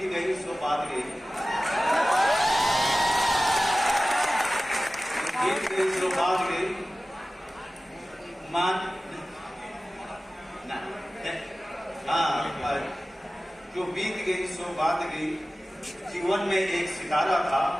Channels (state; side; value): normal; both; correlation 0.97